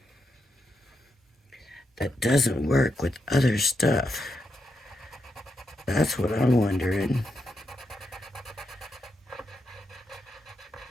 That doesn't work with other stuff. That's what I'm wondering.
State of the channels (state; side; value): normal; both; correlation 0.84